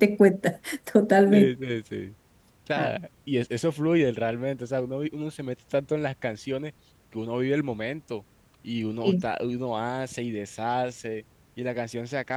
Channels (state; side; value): identical; both; correlation 1.00